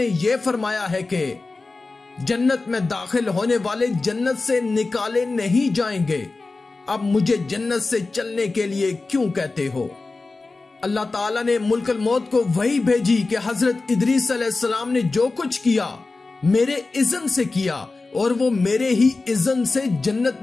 یہ فرمایا ہے کہ جنت میں داخل ہونے والے جنت سے نکالے نہیں جائیں گے۔ اب مجھے جنت سے چلنے کے لیے کیوں کہتے ہو؟ اللہ تعالیٰ نے ملک الموت کو وحی بھیجی کہ حضرت ادریس علیہ السلام نے جو کچھ کیا میرے اذن سے کیا، اور وہ میرے ہی اذن سے جنت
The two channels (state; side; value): quieter; right; 3.6 dB